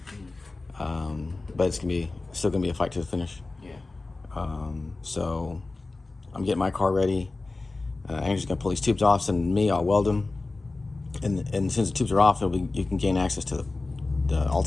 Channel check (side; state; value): right; quieter; 3.4 dB